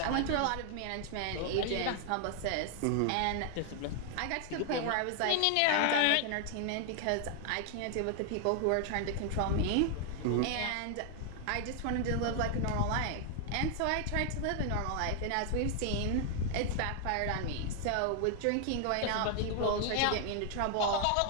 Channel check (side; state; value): both; different; correlation 0.00